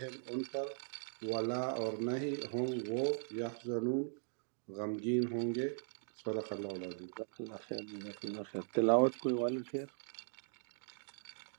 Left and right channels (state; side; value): silent; left; digital silence